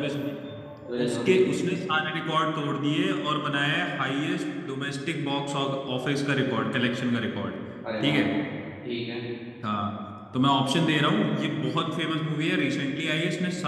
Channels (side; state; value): both; identical; correlation 1.00